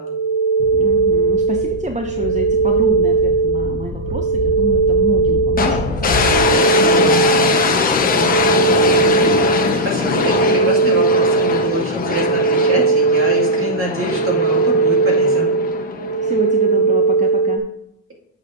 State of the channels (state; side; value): normal; both; correlation -0.11